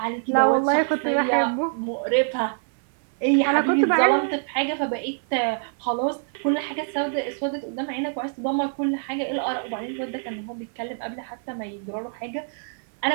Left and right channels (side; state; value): left; silent; 55 dB below the other